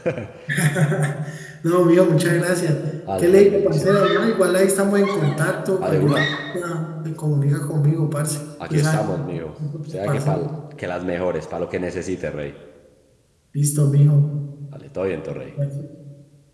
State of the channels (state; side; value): identical; both; correlation 1.00